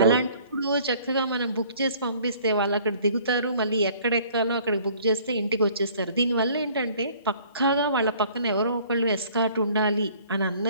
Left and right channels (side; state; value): both; inverted; correlation -0.55